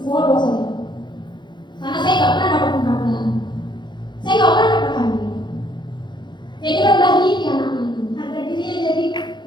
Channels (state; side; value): late; right; 0.22 ms